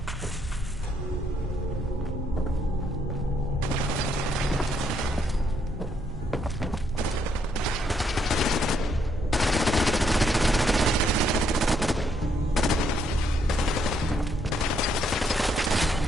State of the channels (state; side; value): normal; both; correlation 0.73